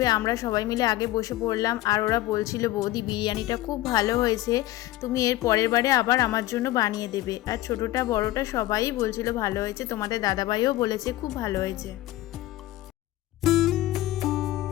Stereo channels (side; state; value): right; quieter; 16.0 dB